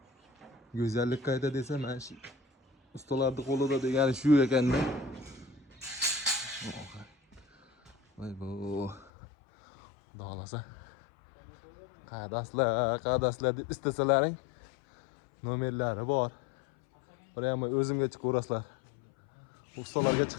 Go'zallik qayda desa, men shu ustalarning qo'lida degani shu ekanda. Vay bu. Xudo xolasa. Qadaslar deb istasalaring nomerlari bor. Prямо o'zimga chiqaverasizlar. Ustalarga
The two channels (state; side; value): drops out; right; at 9.1 s